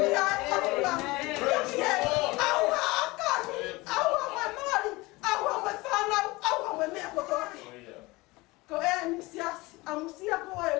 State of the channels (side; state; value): right; quieter; 22.2 dB